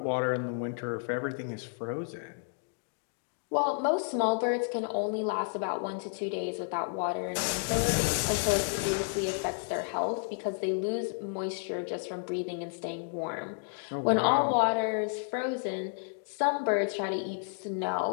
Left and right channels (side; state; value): right; silent; digital silence